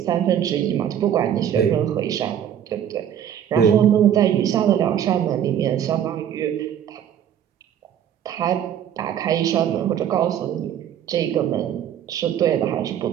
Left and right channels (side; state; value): left; quieter; 9.7 dB